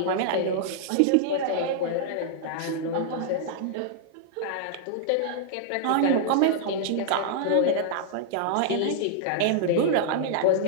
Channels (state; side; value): different; both; correlation -0.01